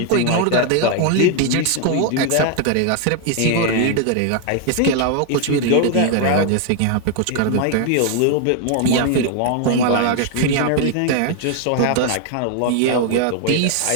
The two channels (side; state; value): both; different; correlation 0.00